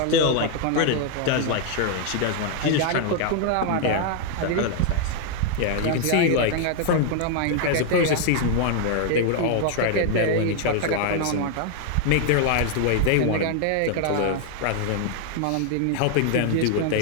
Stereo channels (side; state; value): both; different; correlation 0.00